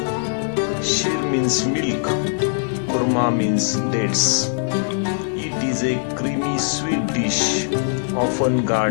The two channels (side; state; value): right; silent; digital silence